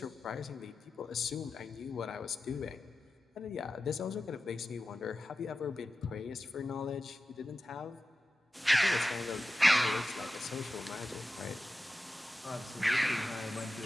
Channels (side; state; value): both; normal; correlation 0.93